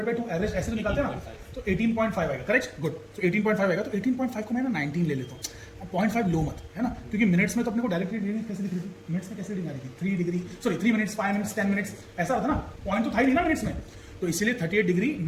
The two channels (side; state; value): both; identical; correlation 1.00